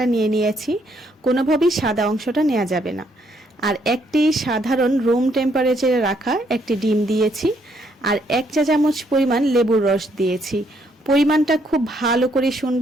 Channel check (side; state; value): both; normal; correlation 0.71